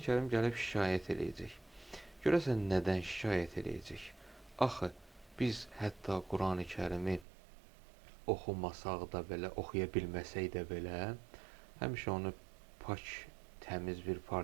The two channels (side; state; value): left; drops out; at 7.2 s